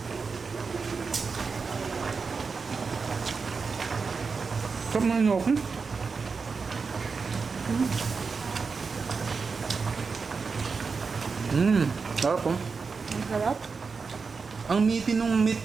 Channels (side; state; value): left; quieter; 4.9 dB